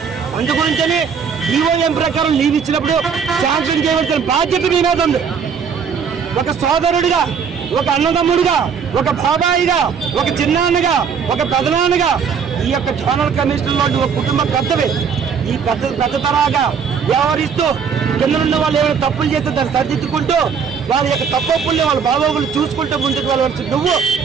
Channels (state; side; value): quieter; left; 6.6 dB